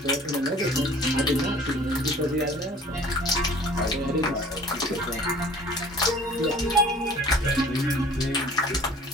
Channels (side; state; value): both; normal; correlation 0.49